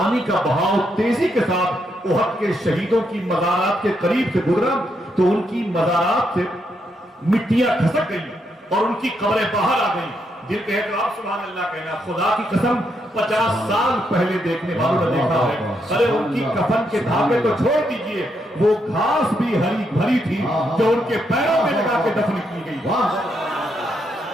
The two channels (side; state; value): both; normal; correlation 0.79